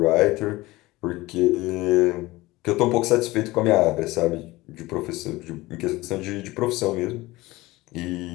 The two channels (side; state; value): right; quieter; 19.7 dB